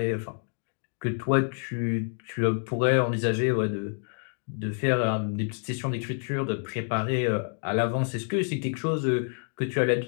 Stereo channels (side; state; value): right; silent; 59 dB below the other